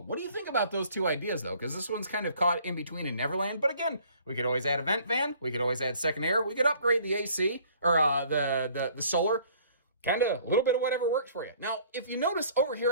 What do you think about those two ideas, though? Because this one's kind of caught in between in Neverland. But again, we could always add a vent fan. We could always add second air. We could upgrade the AC or the solar. Kind of a little bit of whatever works for you. Now, if you notice over here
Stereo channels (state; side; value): inverted; both; correlation -0.55